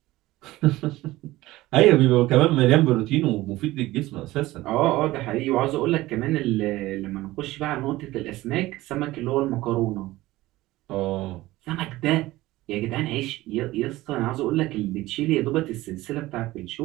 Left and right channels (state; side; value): quieter; left; 17.7 dB